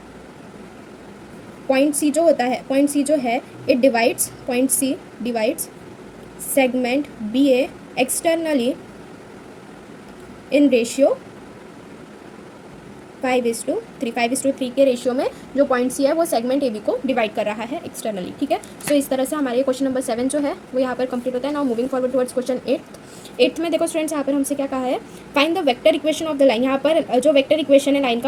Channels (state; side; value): identical; both; correlation 1.00